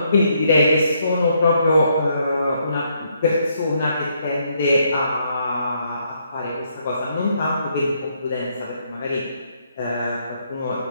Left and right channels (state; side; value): inverted; both; correlation -0.73